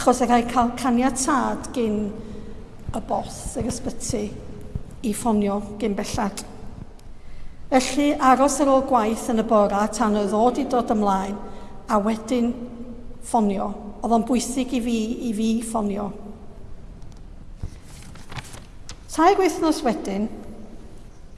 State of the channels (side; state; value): both; identical; correlation 1.00